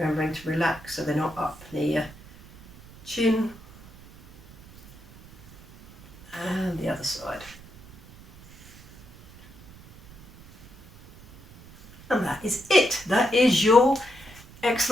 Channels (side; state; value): right; noise; rumble, 22 dB below the sound